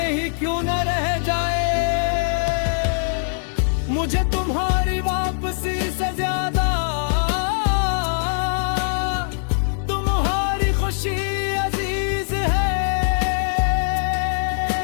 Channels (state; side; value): silent; right; digital silence